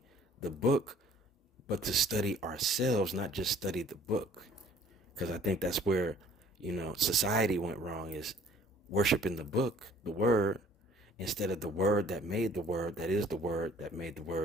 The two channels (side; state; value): both; normal; correlation 0.56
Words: the book, but to study ourselves, not just study the book. Because I think that's where, society went wrong, is worshiping the book, the word, instead of the word that made the word, that is the word that made the